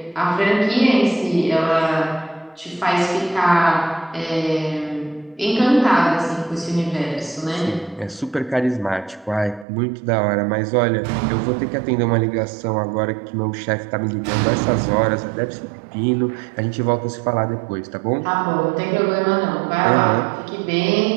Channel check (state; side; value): drops out; left; at 9.7 s